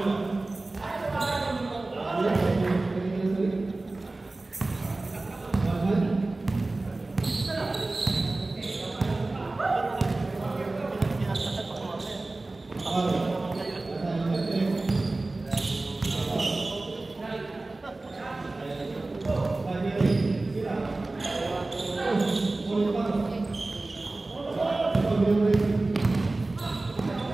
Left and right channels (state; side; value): quieter; left; 3.1 dB